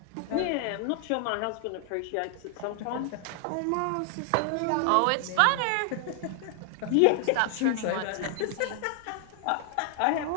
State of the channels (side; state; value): both; different; correlation 0.00